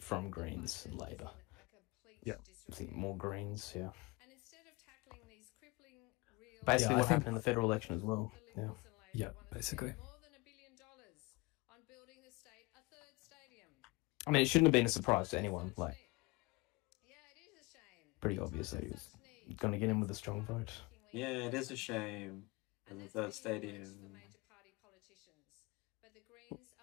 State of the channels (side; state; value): right; quieter; 23.9 dB